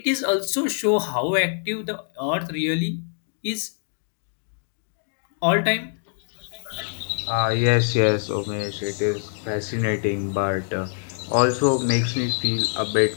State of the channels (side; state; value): right; silent; digital silence